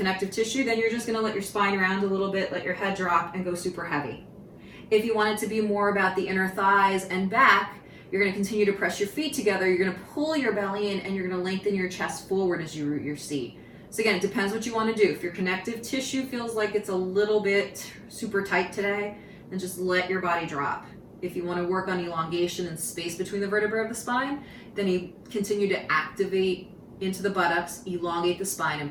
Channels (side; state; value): both; identical; correlation 1.00